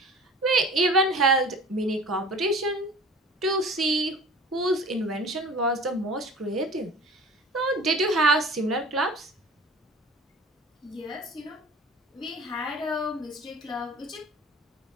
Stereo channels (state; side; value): normal; both; correlation 0.42